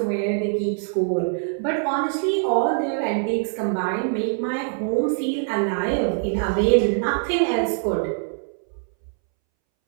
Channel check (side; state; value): left; silent; 63 dB below the other